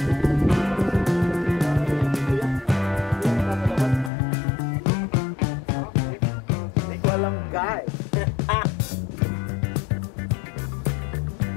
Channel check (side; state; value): right; drops out; at 4.1 s